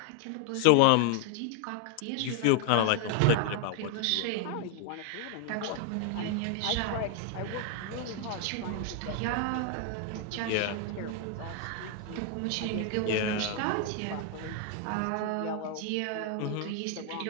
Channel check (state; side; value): different; both; correlation 0.00